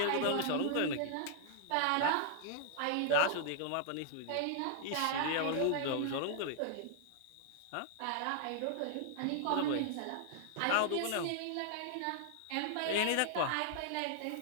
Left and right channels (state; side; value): different; both; correlation -0.01